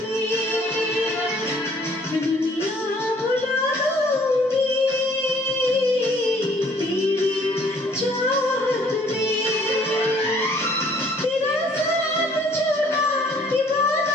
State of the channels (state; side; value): normal; both; correlation 0.59